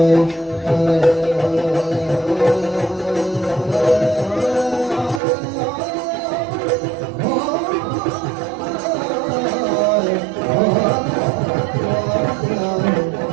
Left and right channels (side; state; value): left; drops out; at 5.2 s